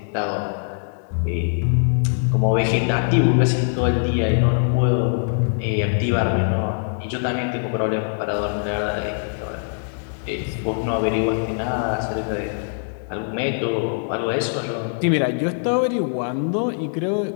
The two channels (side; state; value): right; silent; 64 dB below the other